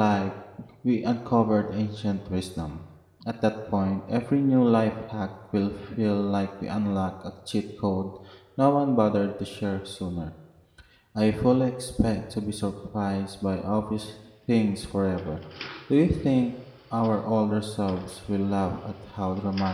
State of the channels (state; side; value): identical; both; correlation 1.00